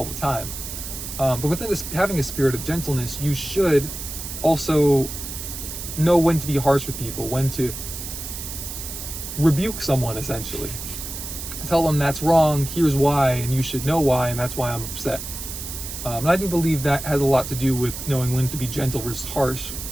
the time. But within having a spirit of gentleness, you should also know when to be harsh with people, when to rebuke someone, essentially. Tell them that's wrong, here's why, and you should know why, and that's why I'm upset. And I do believe that has a lot to do with knowing when to be gentle versus harsh,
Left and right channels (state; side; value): noise; right; hiss, 8 dB below the sound